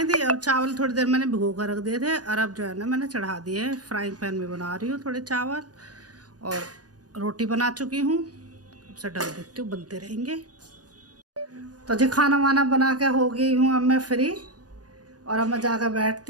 दी। और चावल थोड़ी देर मैंने भिगो कर रख दिए थे, और अब जो है ना मैंने चढ़ा दिए। फ्राइंग पैन में बना रही हूँ थोड़े चावल, और रोटी बना चुकी हूँ। अब से डाल देती हूँ, बनते रहेंगे। तो जी खाना वाना बना के हो गई हूँ अब मैं फ्री, और अब मैं जाकर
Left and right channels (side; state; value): left; late; 0.68 ms